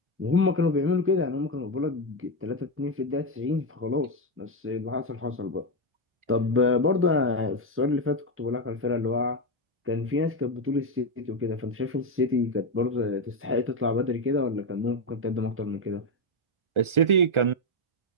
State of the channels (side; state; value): left; late; 1.4 ms